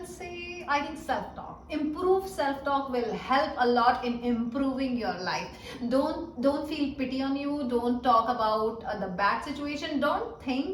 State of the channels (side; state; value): both; identical; correlation 1.00